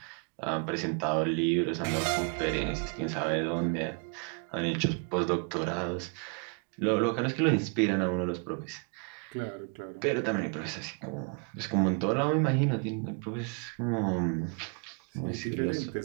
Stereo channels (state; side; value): quieter; left; 37.1 dB